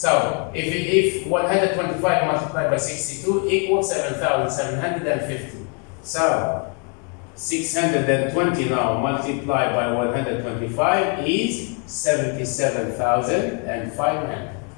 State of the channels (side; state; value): right; quieter; 37.2 dB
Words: if 125 multiplied by 62 equals 7,750. So, 620 now multiplied by 125 is 77,500.